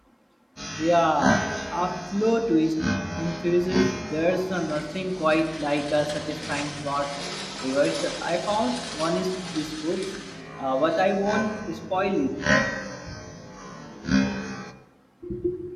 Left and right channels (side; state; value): both; identical; correlation 1.00